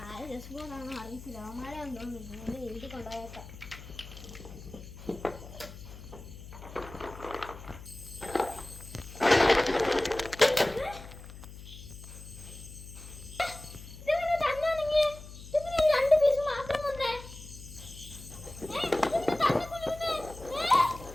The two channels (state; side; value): noise; left; hum, 14 dB below the sound